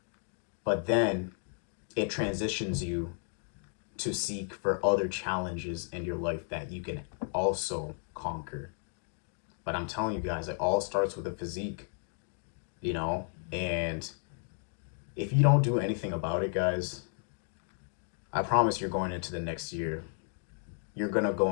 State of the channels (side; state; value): right; silent; 56 dB below the other